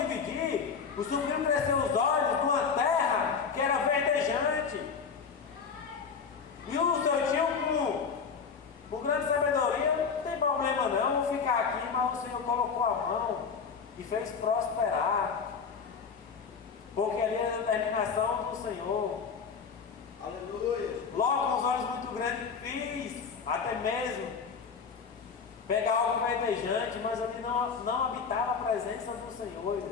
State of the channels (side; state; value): right; quieter; 5.9 dB